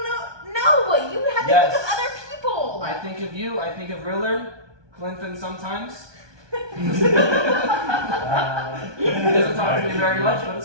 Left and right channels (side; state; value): left; late; 1.2 ms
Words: No, you have to Yes. think of other people. I think of you. I think of Rillard, Glenfin sometimes. He doesn't talk to me very much, but